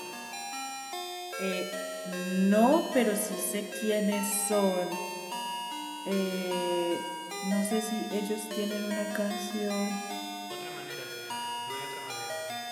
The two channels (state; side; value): identical; both; correlation 1.00